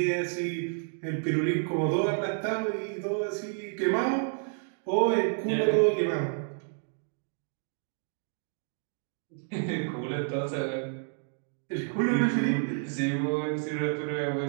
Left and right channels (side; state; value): left; silent; 58 dB below the other